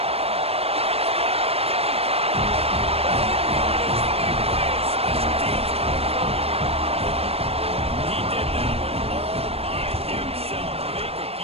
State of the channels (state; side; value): late; left; 0.29 ms